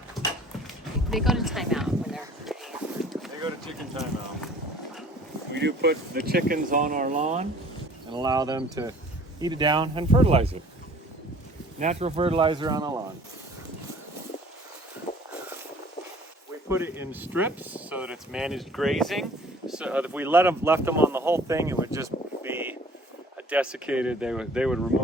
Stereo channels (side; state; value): both; normal; correlation 0.51